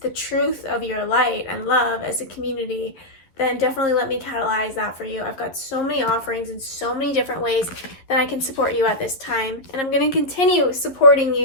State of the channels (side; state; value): right; late; 11 ms